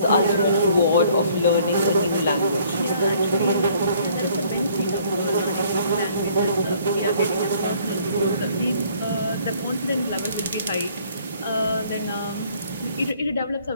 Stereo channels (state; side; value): inverted; both; correlation -0.60